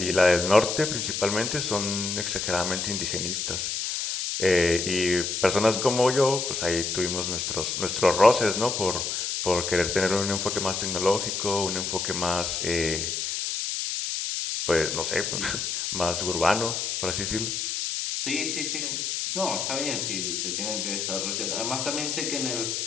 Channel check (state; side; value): noise; left; hiss, 2 dB below the sound